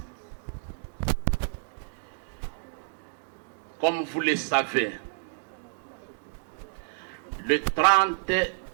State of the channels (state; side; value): silent; left; digital silence